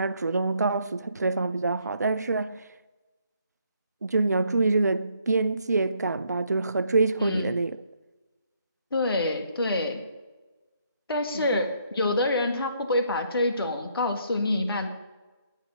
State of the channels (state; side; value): inverted; both; correlation -0.70